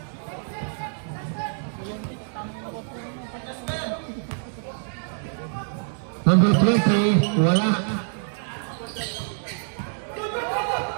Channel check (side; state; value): left; silent; 61 dB below the other